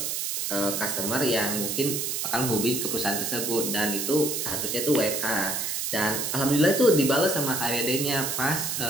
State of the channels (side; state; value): right; noise; hiss, 1 dB below the sound